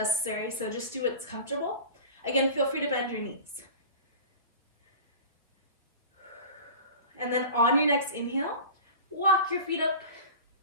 so just do what's comfortable. Again, feel free to bend your knees. And then on your next inhale, walk your feet up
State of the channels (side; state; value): both; inverted; correlation -0.36